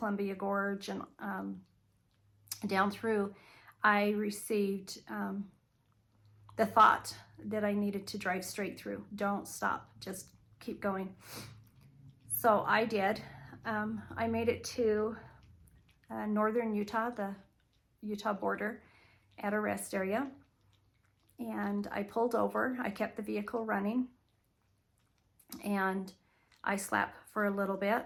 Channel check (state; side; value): identical; both; correlation 1.00